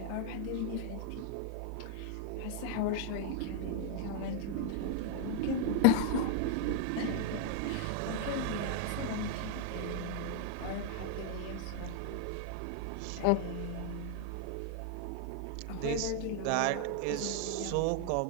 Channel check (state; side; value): different; both; correlation 0.00